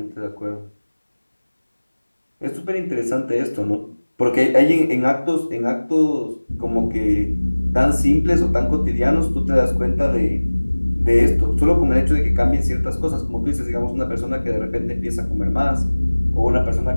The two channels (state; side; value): inverted; both; correlation -1.00